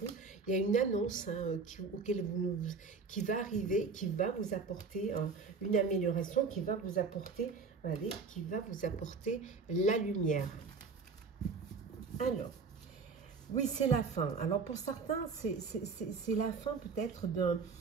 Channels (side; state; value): left; quieter; 4.8 dB